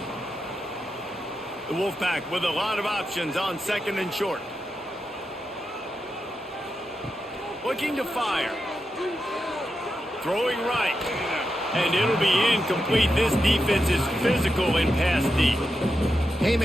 The Wolfpack with a lot of options on second and short. Looking to fire. Throwing right. And it'll be incomplete. This defense is physical in pass deep. Hey,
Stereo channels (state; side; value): normal; both; correlation 0.88